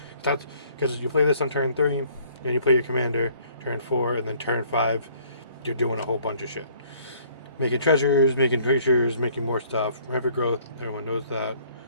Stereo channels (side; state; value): both; inverted; correlation -0.60